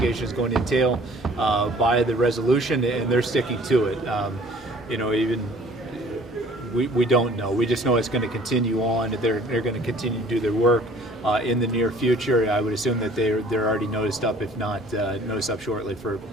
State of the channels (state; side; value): normal; both; correlation 0.53